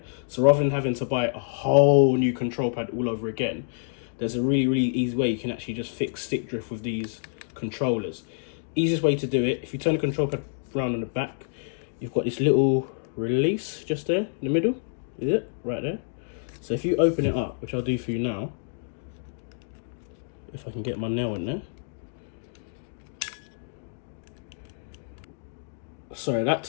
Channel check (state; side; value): silent; right; digital silence